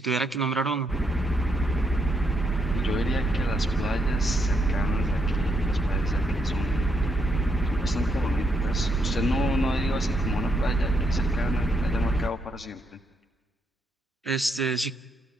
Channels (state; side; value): normal; both; correlation 0.77